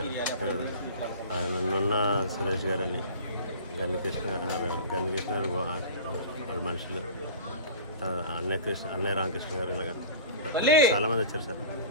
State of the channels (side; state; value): both; inverted; correlation -0.38